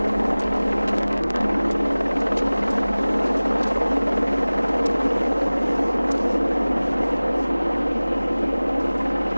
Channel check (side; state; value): both; inverted; correlation -0.99